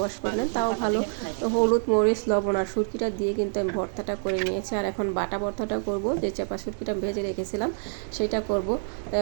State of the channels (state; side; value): silent; left; digital silence